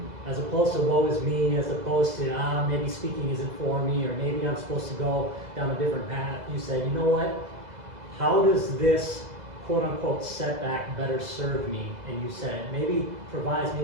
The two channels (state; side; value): late; left; 2.0 ms